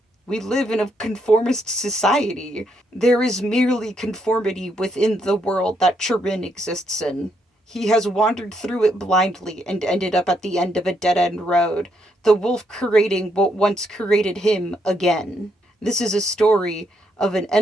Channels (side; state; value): both; normal; correlation 0.76